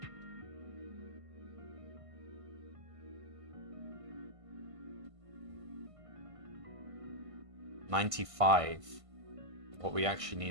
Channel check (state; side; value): late; left; 1.5 ms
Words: $95. What we actually